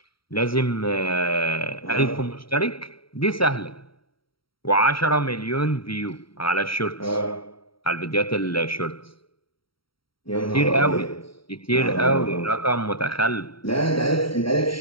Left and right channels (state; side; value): late; right; 0.75 ms